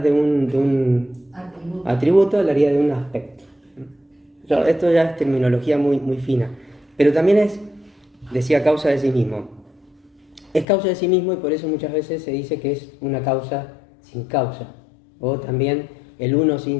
de un atributo, hablaría de un aspecto. Esto ya es terminología muy, muy fina, pero también decía causa de sí mismo. Es causa de sí mismo y por eso muchas veces se dice que es una causa sin causa, o también el uno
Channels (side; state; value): right; drops out; at 10.7 s